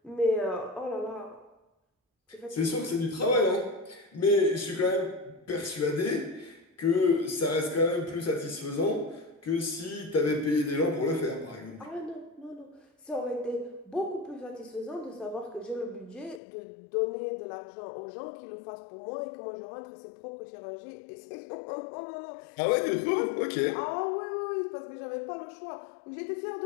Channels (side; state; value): right; drops out; at 16.4 s